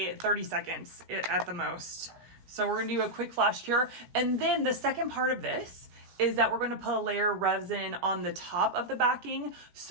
30 seconds at the most. So we're gonna do a quick flash cure. And then the second part of this is that we're gonna put a layer of resin on the top of the backing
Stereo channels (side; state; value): left; late; 17 ms